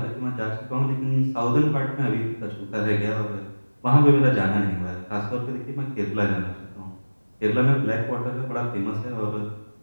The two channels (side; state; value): both; inverted; correlation -1.00